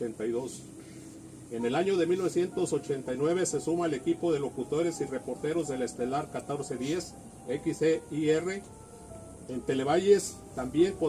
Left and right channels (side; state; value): both; identical; correlation 1.00